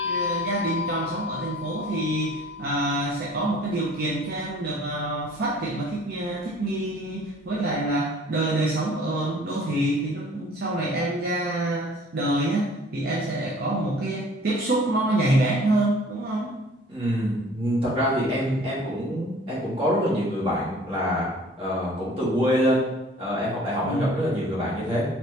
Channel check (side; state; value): both; normal; correlation 0.50